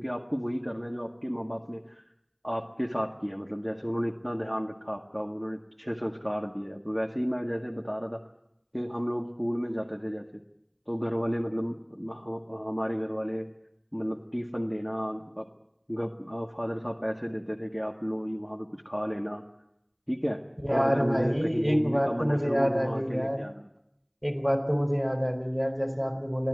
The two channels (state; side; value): identical; both; correlation 1.00